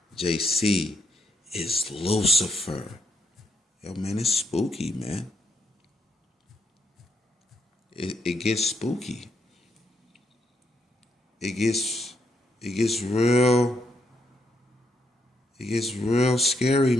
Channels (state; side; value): normal; both; correlation 0.76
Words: JC is Lucifer. Yo, man, it's spooky, man. It gets spooky. It gets real scary,